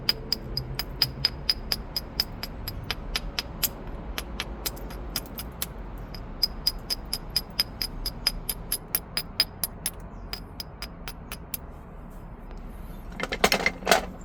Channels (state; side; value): identical; both; correlation 1.00